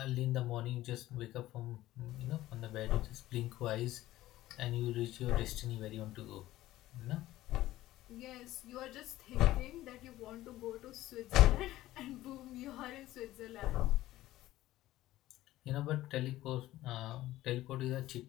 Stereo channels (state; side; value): quieter; right; 15.6 dB